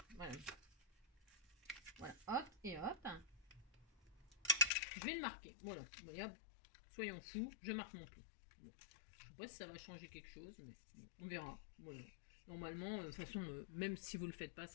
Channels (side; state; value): right; drops out; at 4.7 s